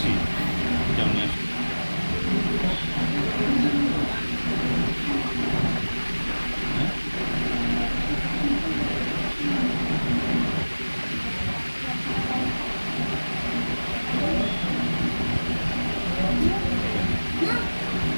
যেমন আছে। হ্যাঁ?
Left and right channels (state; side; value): inverted; both; correlation -1.00